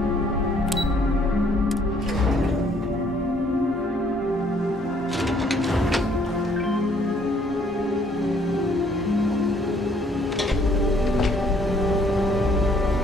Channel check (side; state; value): both; normal; correlation 0.64